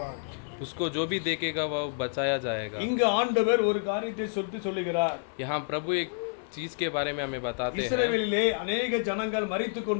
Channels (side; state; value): right; silent; 59 dB below the other